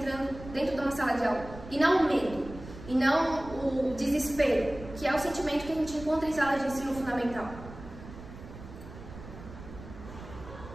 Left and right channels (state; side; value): noise; right; rumble, 14 dB below the sound